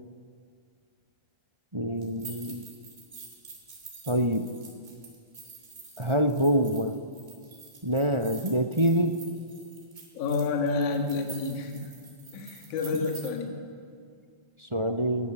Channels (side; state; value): left; late; 1.6 ms